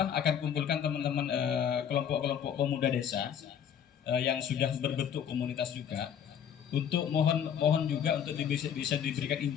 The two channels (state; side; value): quieter; right; 8.6 dB